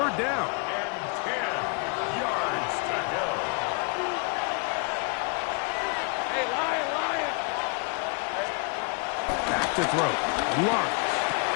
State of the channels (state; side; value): quieter; right; 34.4 dB